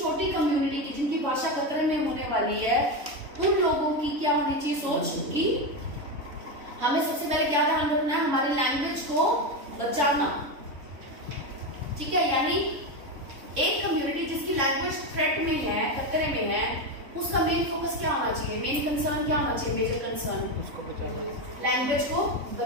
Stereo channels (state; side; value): late; left; 3.6 ms